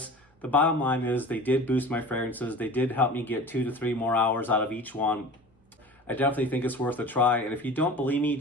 the bottom line is they did boost my fragrances. They did help me get 2 to 3 more hours out of each one. I definitely think it's worth a try. And if you don't believe me,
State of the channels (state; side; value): normal; both; correlation 0.38